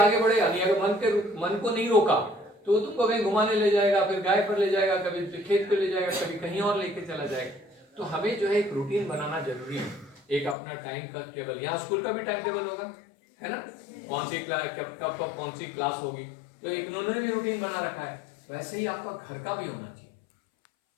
बढ़ेगा। नहीं अगर मन को नहीं रोका तो तुमको कहीं घुमाने ले जाएगा, फिर गाय पर ले जाएगा, कभी खेत पे ले जाएगा, कभी कहीं और लेके चला जाएगा। तो हमें जो है एक रूटीन बनाना जरूरी है, एक अपना टाइम का टेबल। यहाँ स्कूल का भी टाइम टेबल होगा, है ना, कौन सी क्लास कब कौन सी क्लास होगी, तो एक उन्होंने भी रूटीन बना रखा है। वैसे ही आपका घर का भी होना चाहिए,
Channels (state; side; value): drops out; right; at 10.6 s